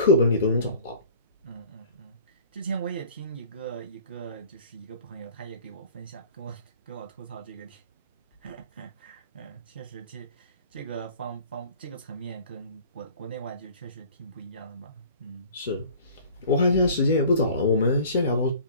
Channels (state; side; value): inverted; both; correlation -0.46